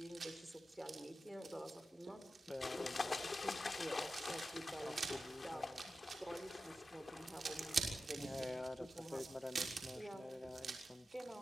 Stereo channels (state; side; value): normal; both; correlation 0.92